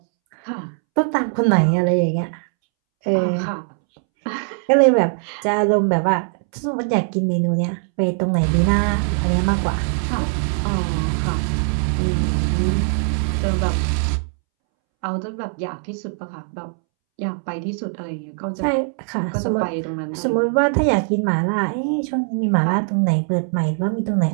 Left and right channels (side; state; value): left; silent; 65 dB below the other